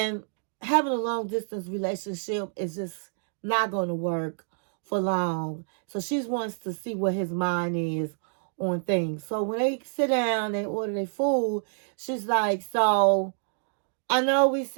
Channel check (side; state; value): left; silent; digital silence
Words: having a long distance relationship is just not going to work for long. So she wants to see what his mind is on things. So when they sit down, they order their food, she's like, so I know we